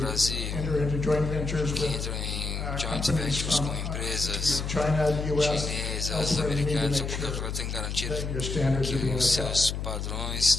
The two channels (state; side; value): noise; left; hum, 4 dB below the sound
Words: enter into joint ventures que with entram em joint companies ventures from com empresas China, the US, chinesas, also you need to americanas ou make qualquer sure outra, tem que garantir that your standards que are being os upheld. seus padrões